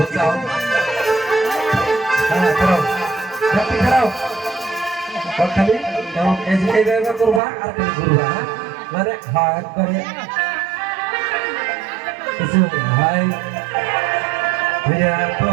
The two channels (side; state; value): left; drops out; at 7.4 s